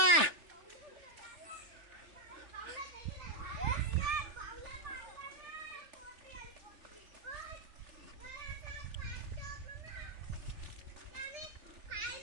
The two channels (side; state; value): left; late; 3.4 ms